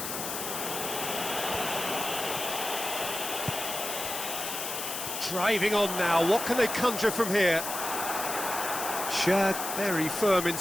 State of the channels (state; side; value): noise; left; hiss, 5 dB below the sound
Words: Driving on now, what can they conjure from here? Shad very firm in